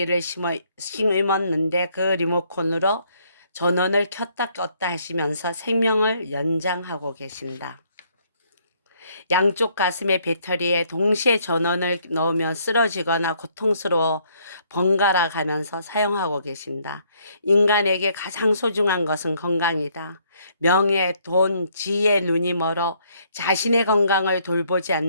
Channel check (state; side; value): inverted; both; correlation -0.67